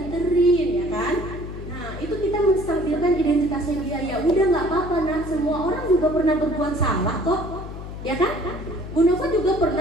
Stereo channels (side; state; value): left; noise; hum, 10 dB below the sound